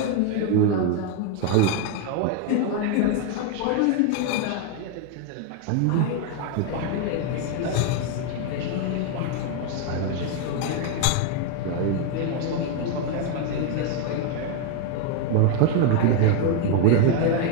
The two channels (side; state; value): both; different; correlation 0.01